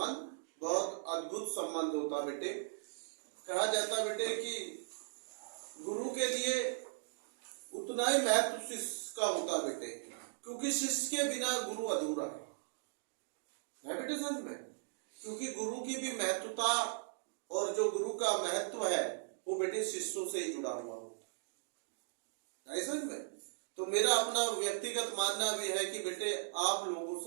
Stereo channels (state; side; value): silent; left; digital silence